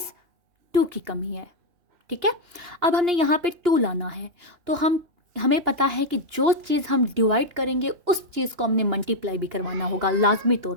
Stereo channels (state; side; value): late; left; 2.9 ms